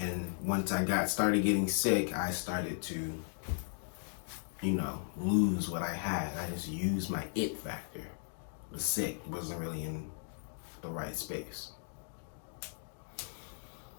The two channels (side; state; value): right; silent; digital silence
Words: once I started getting sick, I started to, lose what I had. I just used my it factor. Was sick, wasn't really in the right space.